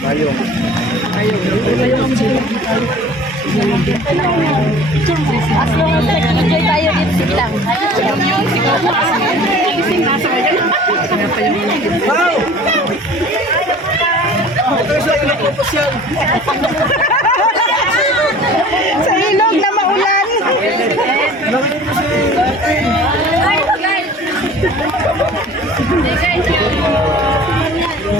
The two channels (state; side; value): normal; both; correlation 0.46